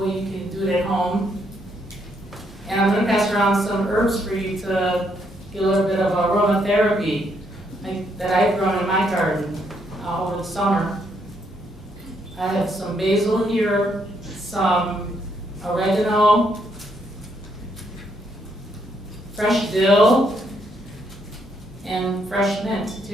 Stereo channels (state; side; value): normal; both; correlation 0.74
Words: you can do it at home. And I'm going to pass around some herbs for you to get a little bit of aromatherapy that I've grown in my garden over the summer. I have some basil here, some oregano, fresh dill, and fresh mint